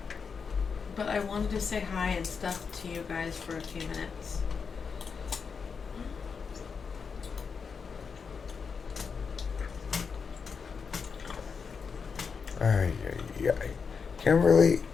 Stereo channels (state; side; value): quieter; right; 5.7 dB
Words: But I wanted to say hi and stuff to you guys for a few minutes. Ay. Kimberly,